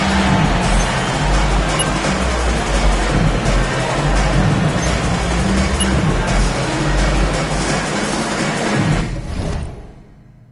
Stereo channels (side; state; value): both; identical; correlation 1.00